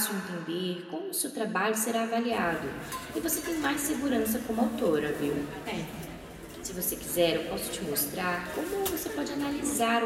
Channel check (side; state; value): both; identical; correlation 1.00